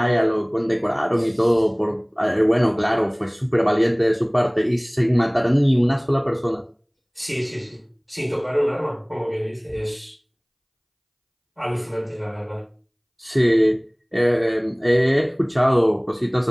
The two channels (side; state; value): both; identical; correlation 1.00